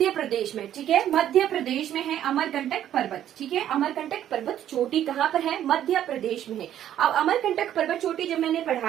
प्रदेश में, ठीक है, मध्य प्रदेश में है अमरकंटक पर्वत, ठीक है। अमरकंटक पर्वत चोटी कहाँ पर है? मध्य प्रदेश में है। अब अमरकंटक पर्वत चोटी जब मैंने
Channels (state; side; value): quieter; left; 11.1 dB